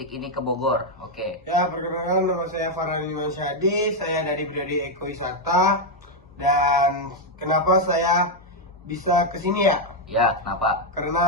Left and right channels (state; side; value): normal; both; correlation 0.02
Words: ini ke Bogor. Oke. Ya, perkenalkan nama saya Farhan Iman Syadi, saya dari Prodi Ekowisata. Dan kenapa saya bisa kesini ya? Ya, kenapa?